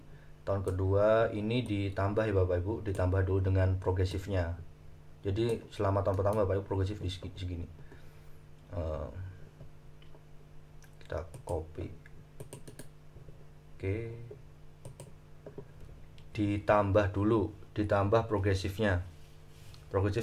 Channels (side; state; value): both; identical; correlation 1.00